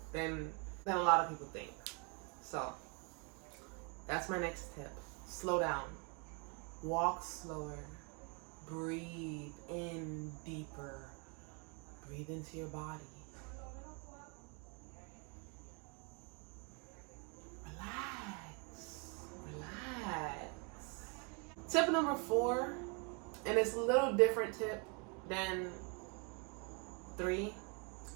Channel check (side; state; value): left; quieter; 34.4 dB